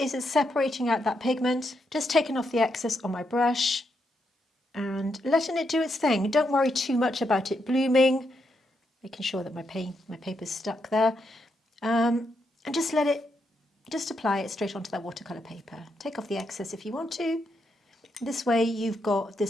it's separating out that pigment, just taking off the excess on my brush and letting it do its thing. Don't worry too much about it blooming, making sure that my paper's stuck there, and just apply it straight onto that watercolour paper. Take off the excess if you want to. This way you've got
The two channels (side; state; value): both; normal; correlation 0.81